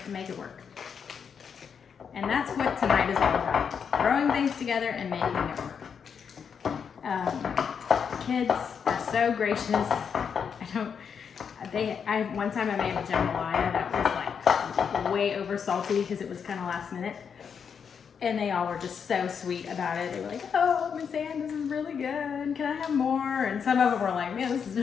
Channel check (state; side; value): quieter; right; 6.8 dB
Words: and make it work. And that's what tonight is all about. Throwing things together and making it work. Kids are so gracious. One time I made a jambalaya that was like way over salty because it was kind of last minute. And they all were just so sweet about it. They were like, oh, Miss Ann, this is really good. Can I have more? And some of them were like, man, this is